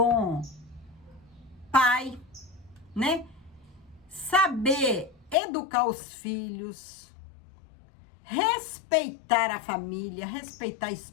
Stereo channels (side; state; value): right; drops out; at 5.4 s